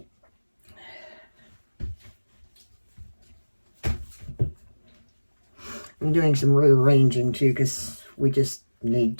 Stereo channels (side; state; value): both; inverted; correlation -1.00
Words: I'm doing some rearranging too because we just need